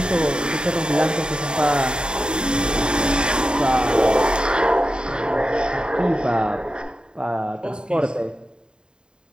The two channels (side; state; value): left; late; 0.049 ms